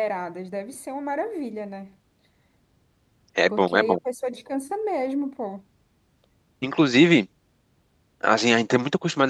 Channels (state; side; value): identical; both; correlation 1.00